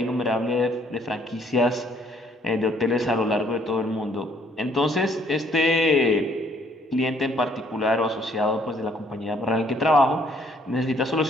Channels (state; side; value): normal; both; correlation 0.64